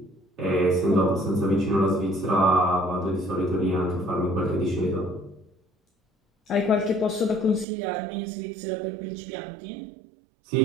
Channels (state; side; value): drops out; left; at 7.7 s